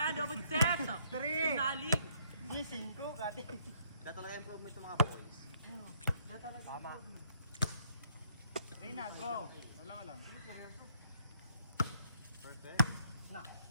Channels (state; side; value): inverted; both; correlation -0.68